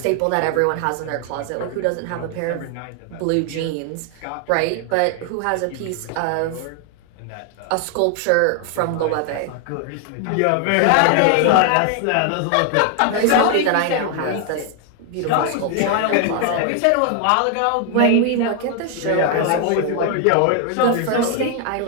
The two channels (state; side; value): different; both; correlation 0.00